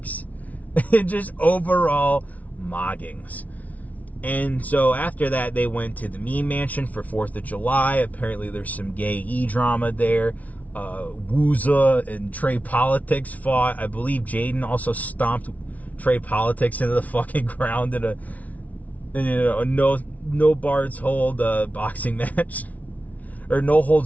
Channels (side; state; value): right; late; 0.071 ms